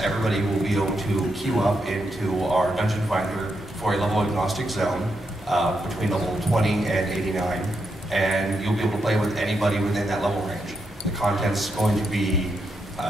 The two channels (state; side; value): normal; both; correlation 0.82